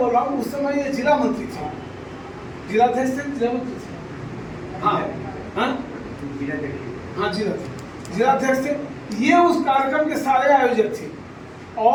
रहा हूँ, उस समय ये जिला मंत्री थे, जिलाध्यक्ष थे, जिला मंत्री थे, हाँ हाँ जिलाध्यक्ष थे। ये उस कार्यक्रम के सारे आयोजक थे,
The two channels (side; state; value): both; identical; correlation 1.00